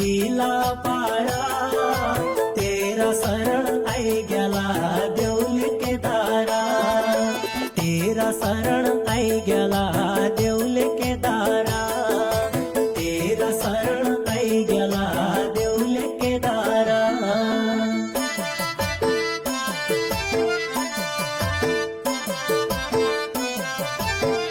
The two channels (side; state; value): both; identical; correlation 1.00